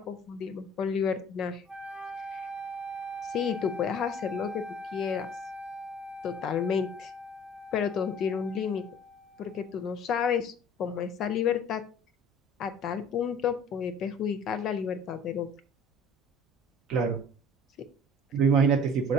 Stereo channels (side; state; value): both; normal; correlation 0.49